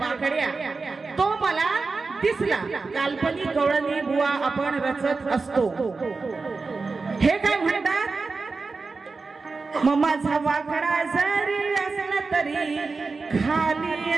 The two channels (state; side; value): quieter; left; 4.2 dB